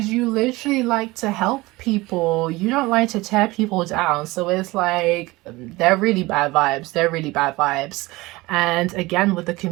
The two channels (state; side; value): quieter; left; 21.0 dB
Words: you literally like to help people. You don't like to tear people down. So it's like they're really bad vibes. They're really bad vibes. And again, with the